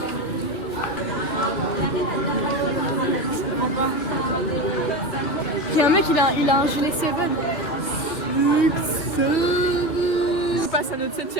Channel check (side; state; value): right; late; 2.9 ms